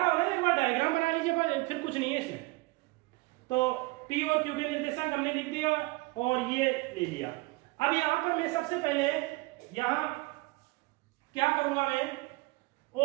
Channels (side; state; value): left; quieter; 23.6 dB